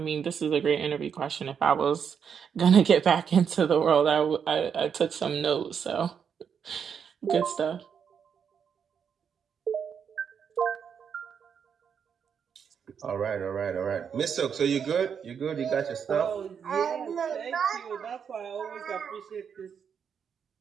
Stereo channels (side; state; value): left; quieter; 7.2 dB